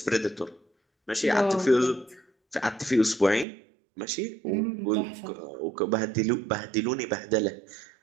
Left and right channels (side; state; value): left; drops out; at 3.5 s